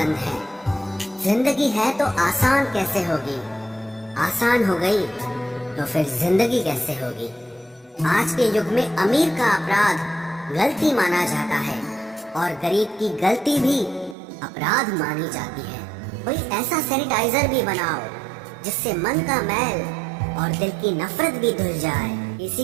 है। जिंदगी है तो आसान कैसे होगी, आसान हो गई तो फिर जिंदगी कैसे होगी। आज के युग में अमीर का अपराध गलती माना जाता है और गरीब की गलती भी अपराध मानी जाती है। कोई ऐसा सैनिटाइजर भी बनाओ जिससे मन का मैल और दिल की नफरत भी धुल जाए।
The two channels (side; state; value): left; drops out; at 14.2 s